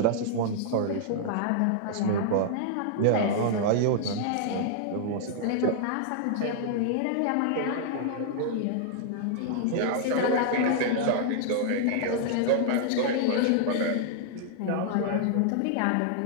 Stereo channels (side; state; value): both; different; correlation -0.01